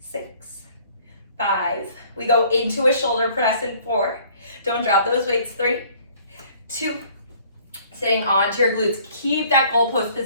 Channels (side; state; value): both; inverted; correlation -0.56